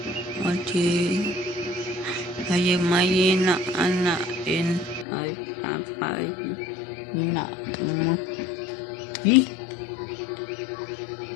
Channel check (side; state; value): right; drops out; at 5.1 s